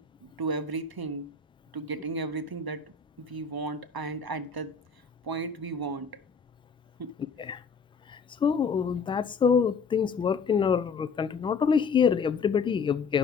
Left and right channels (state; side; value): quieter; right; 5.1 dB